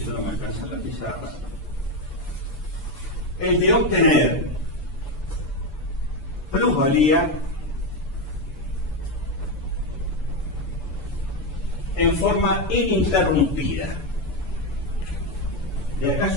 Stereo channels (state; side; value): late; right; 6.9 ms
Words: no me alcanza la pizarra, el de obtener plusvalía en forma ininterrumpida. De acá